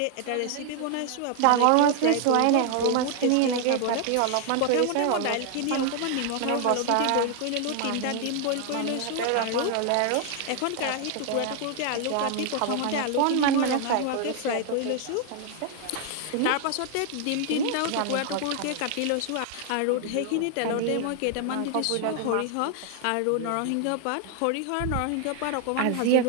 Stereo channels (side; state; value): both; different; correlation 0.00